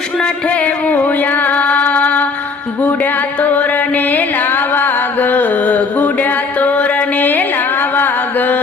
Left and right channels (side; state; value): right; quieter; 4.5 dB